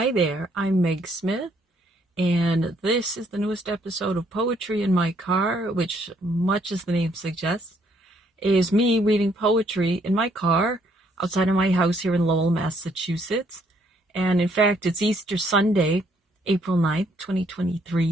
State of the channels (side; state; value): both; normal; correlation 0.68